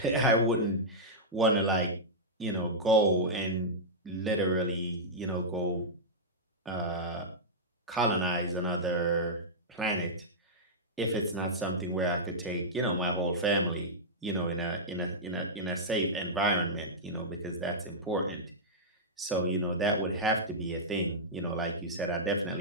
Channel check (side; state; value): both; normal; correlation -0.11